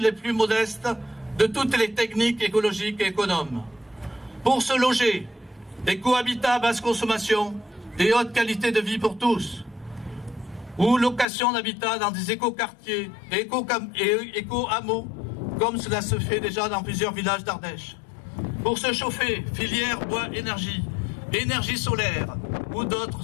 plus modestes de toutes les techniques écologiques et économes. Pour se loger, des cohabitats à basse consommation et haute qualité de vie pour tous, ou location d'habitat dans des éco-quartiers et éco-hameaux, comme cela se fait déjà dans plusieurs villages d'Ardèche. Pour se chauffer, filière bois-énergie, énergie solaire ou d'autres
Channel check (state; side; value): drops out; right; at 11.2 s